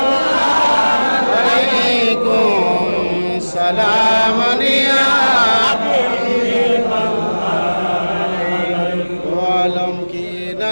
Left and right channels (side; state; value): both; inverted; correlation -1.00